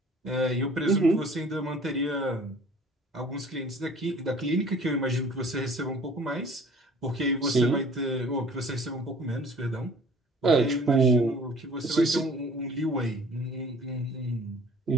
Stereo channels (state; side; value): normal; both; correlation 0.50